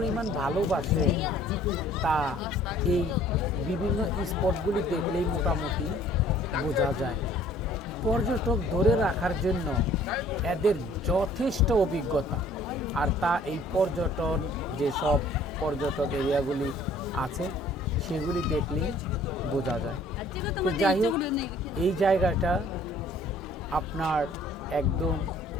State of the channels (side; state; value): both; normal; correlation 0.55